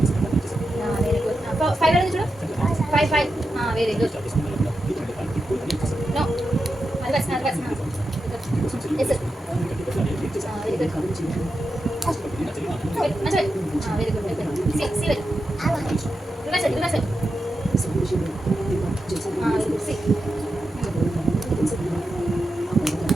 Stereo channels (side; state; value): both; normal; correlation 0.89